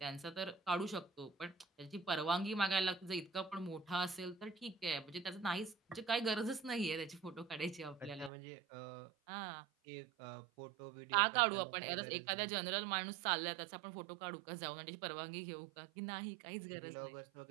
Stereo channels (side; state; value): left; drops out; at 8.3 s